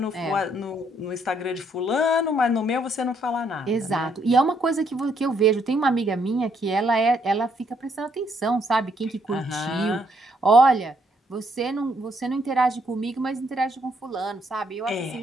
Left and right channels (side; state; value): both; normal; correlation 0.71